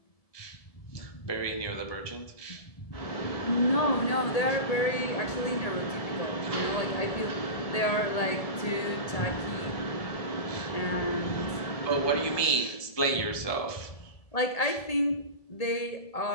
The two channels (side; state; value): right; late; 1.7 ms